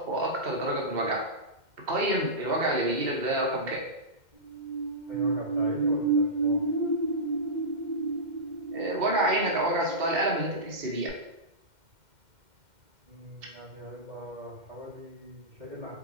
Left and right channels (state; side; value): late; left; 2.1 ms